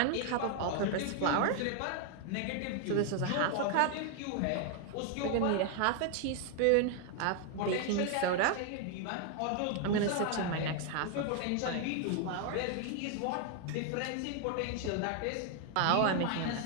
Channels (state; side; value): different; both; correlation 0.00